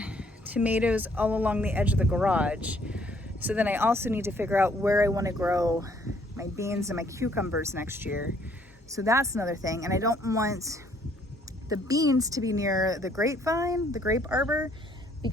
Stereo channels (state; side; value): normal; both; correlation 0.64